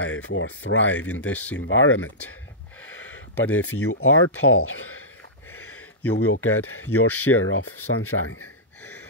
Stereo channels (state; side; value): normal; both; correlation -0.15